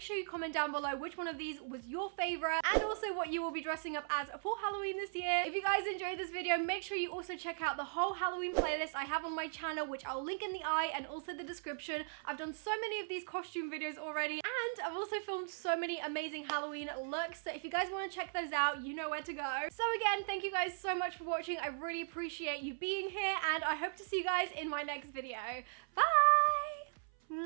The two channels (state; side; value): silent; left; 52 dB below the other